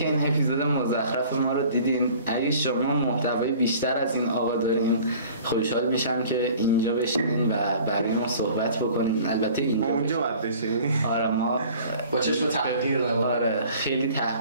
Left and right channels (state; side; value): inverted; both; correlation -0.48